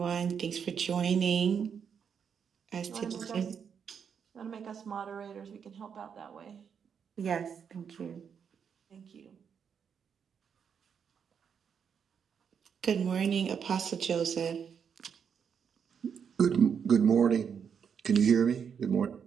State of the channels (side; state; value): left; quieter; 7.2 dB